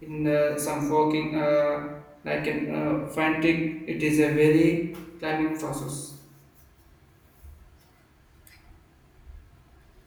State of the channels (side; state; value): both; identical; correlation 1.00